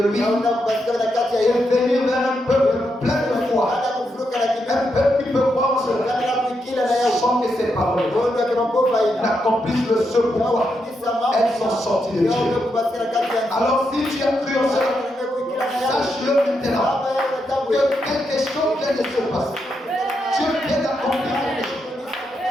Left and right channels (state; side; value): normal; both; correlation 0.82